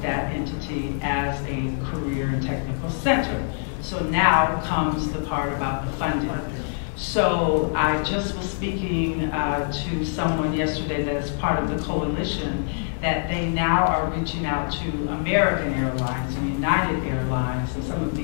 that entity as a career and technical center. So now comes the part about the funding. So I just was speaking to someone yesterday that is part of the coalition that they now are reaching out to American Airlines and United Airlines and some of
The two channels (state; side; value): silent; right; digital silence